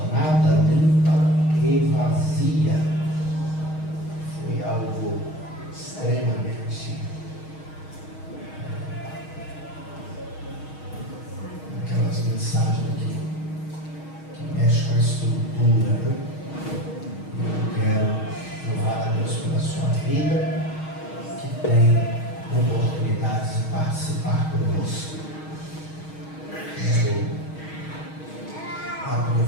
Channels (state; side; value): late; right; 6.4 ms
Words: limpa e vazia. Foi algo extremamente aquelas mensagens que mexem com a estrutura, né? Eu quero louvar a Deus pela sua vida, que tem oportunidades de participar conosco. Quero